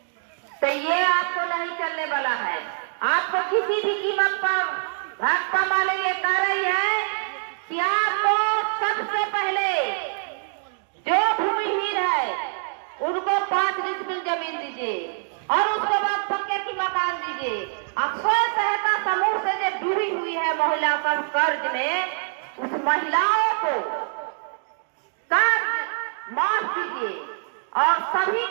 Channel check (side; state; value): left; silent; digital silence